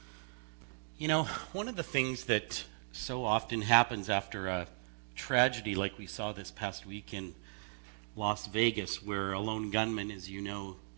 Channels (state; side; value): silent; left; 53 dB below the other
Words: You know, one of the things that so often happens after a tragedy like we saw this past week in Las Vegas, where a lone gunman, as you know,